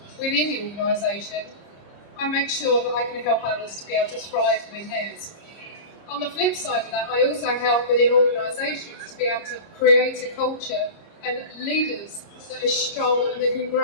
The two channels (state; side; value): late; right; 30 ms